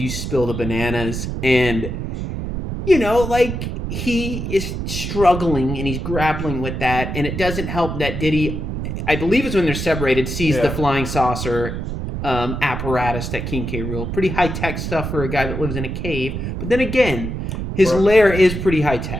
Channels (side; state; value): right; noise; rumble, 4 dB below the sound